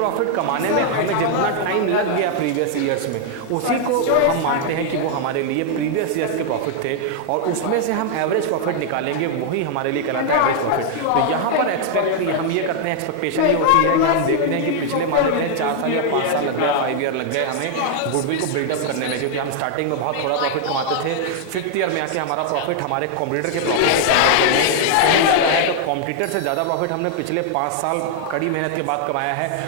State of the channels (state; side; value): different; both; correlation -0.01